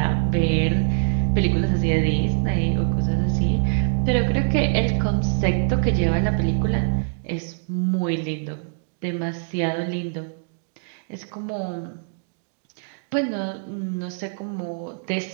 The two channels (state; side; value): silent; left; digital silence